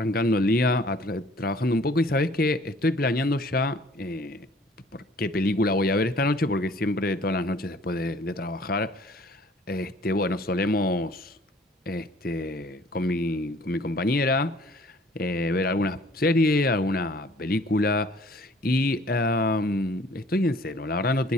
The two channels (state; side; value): normal; both; correlation 0.55